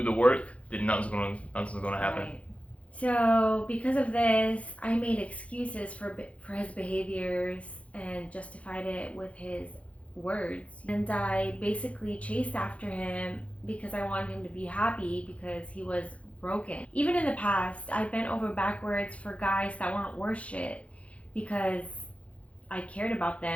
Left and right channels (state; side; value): late; right; 0.064 ms